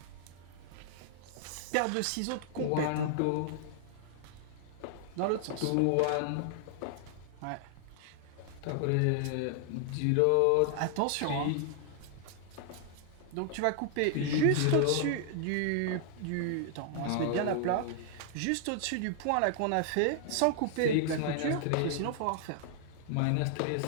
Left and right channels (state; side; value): different; both; correlation 0.00